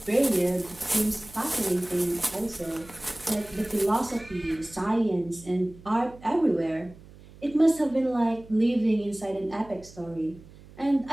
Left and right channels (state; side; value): noise; right; hum, 21 dB below the sound